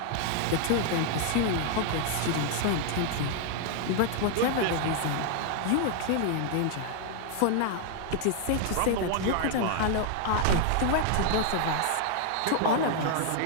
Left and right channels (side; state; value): both; different; correlation 0.00